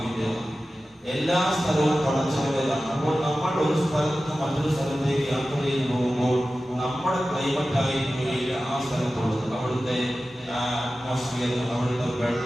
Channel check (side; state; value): both; normal; correlation 0.94